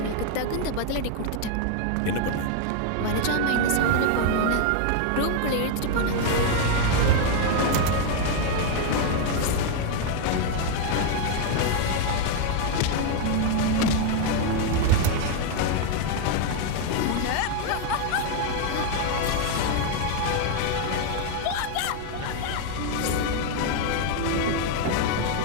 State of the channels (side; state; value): both; different; correlation 0.01